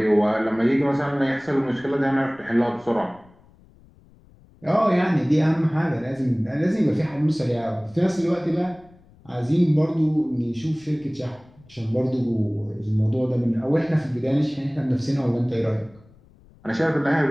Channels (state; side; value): noise; left; rumble, 27 dB below the sound